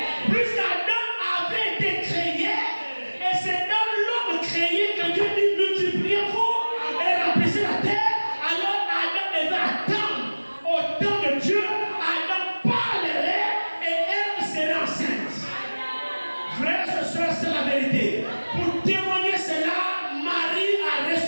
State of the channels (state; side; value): inverted; both; correlation -1.00